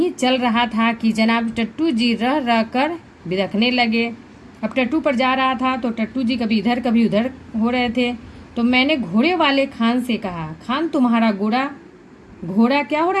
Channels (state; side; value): identical; both; correlation 1.00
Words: चल रहा था कि जनाब टट्टू जी रह रह कर बिदखने लगे। अब टट्टू पर जा रहा था तो टट्टू जी कभी इधर कभी उधर हो रहे थे। तो मैंने घोड़े वाले खान से कहा, खान तुम्हारा घोड़ा क्या हो